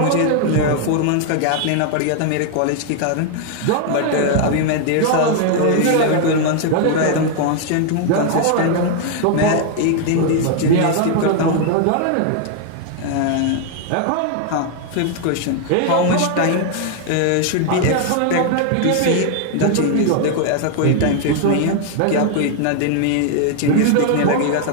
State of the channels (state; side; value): different; both; correlation 0.00